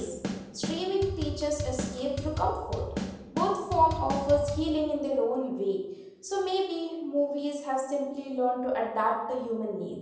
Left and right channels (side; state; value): both; identical; correlation 1.00